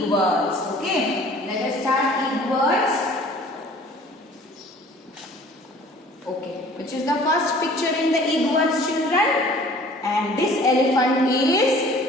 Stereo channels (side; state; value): both; normal; correlation 0.50